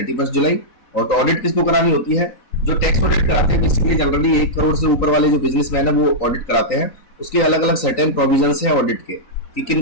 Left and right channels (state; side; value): late; right; 3.9 ms